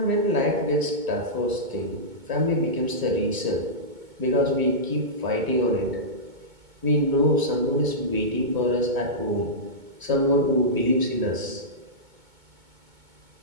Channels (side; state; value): left; late; 2.2 ms